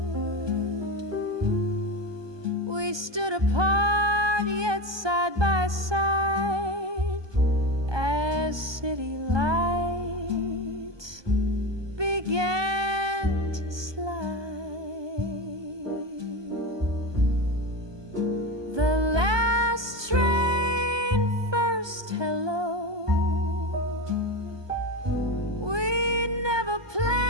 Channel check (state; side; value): late; left; 1.2 ms